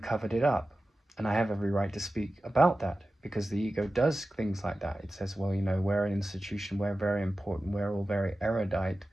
it up. And I have every right to speak about that, because the ego does things like that. It says, well, we're an institution, we're very important, we're all very erudite.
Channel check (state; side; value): normal; both; correlation 0.95